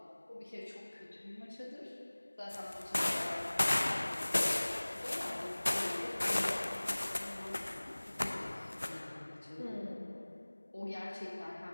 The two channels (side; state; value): both; inverted; correlation -1.00